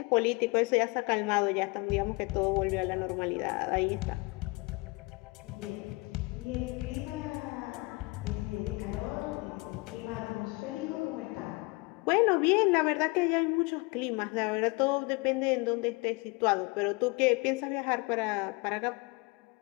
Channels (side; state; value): right; quieter; 27.0 dB